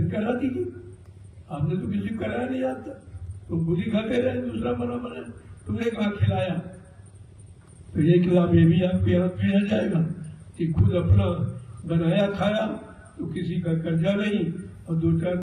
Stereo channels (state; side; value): identical; both; correlation 1.00